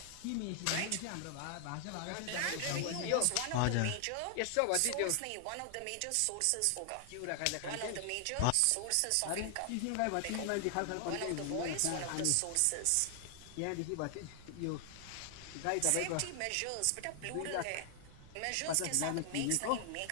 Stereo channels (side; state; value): both; different; correlation 0.00